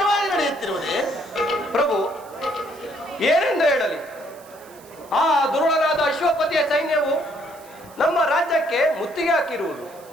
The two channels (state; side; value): noise; right; hiss, 24 dB below the sound